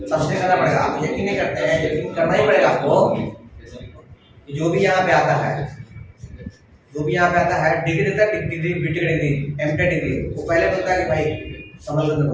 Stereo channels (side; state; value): both; identical; correlation 1.00